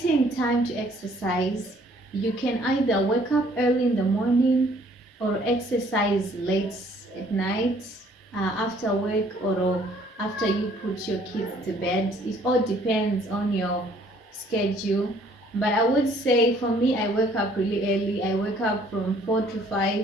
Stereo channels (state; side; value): normal; both; correlation 0.60